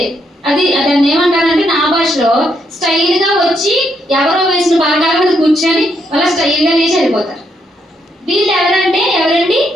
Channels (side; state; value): both; normal; correlation 0.77